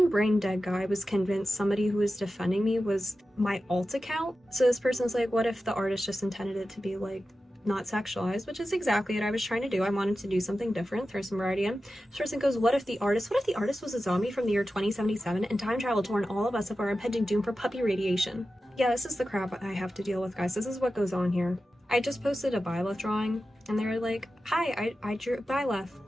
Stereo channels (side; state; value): both; normal; correlation 0.93